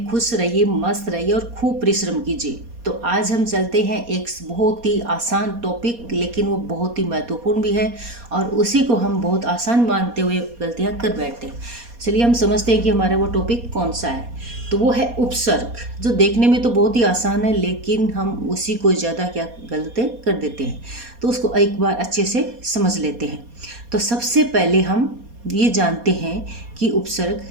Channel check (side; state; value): left; late; 4.2 ms